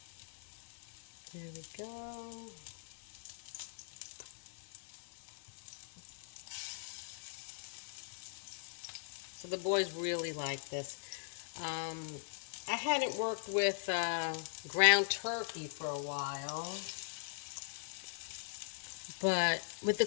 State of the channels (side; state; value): right; silent; digital silence